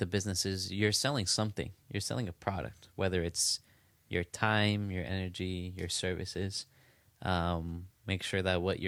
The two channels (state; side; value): identical; both; correlation 1.00